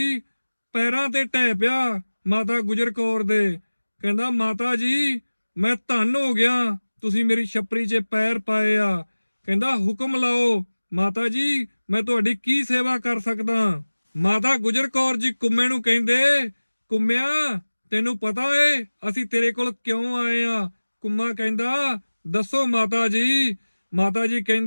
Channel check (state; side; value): inverted; both; correlation -1.00